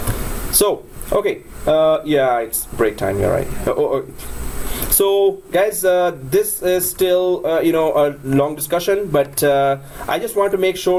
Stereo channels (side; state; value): both; identical; correlation 1.00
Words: So, okay, yeah, it's break time, you're right. So guys, this is still a long discussion, but I just want to make